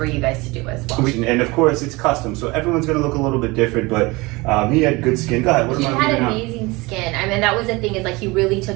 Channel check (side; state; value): left; quieter; 23.5 dB